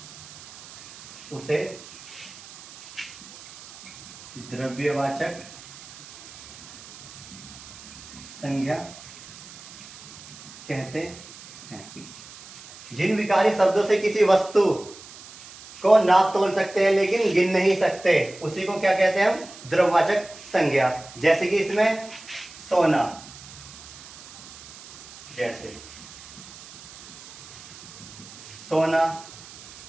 उसे द्रव्यवाचक संज्ञा कहते हैं। जिन विकारी शब्दों से किसी वस्तु को नाप तोल सकते हैं लेकिन गिन नहीं सकते, उसी को क्या कहते हैं हम? द्रव्यवाचक संज्ञा। जैसे कि इसमें सोना, जैसे सोना,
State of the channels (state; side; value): noise; right; hiss, 17 dB below the sound